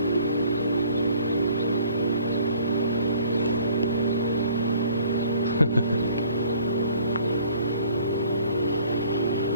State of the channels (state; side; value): inverted; both; correlation -0.56